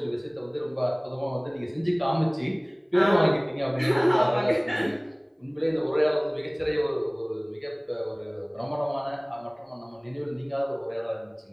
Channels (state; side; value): identical; both; correlation 1.00